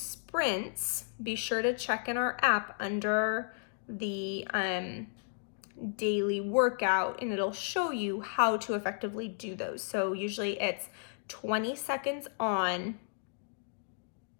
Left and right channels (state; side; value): silent; right; digital silence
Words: be sure to check in our app under the daily workout and it'll show you how to effectively do those. So usually it's 20 seconds on.